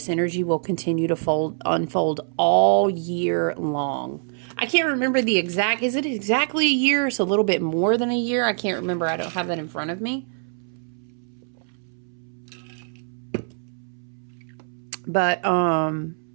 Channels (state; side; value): silent; left; 62 dB below the other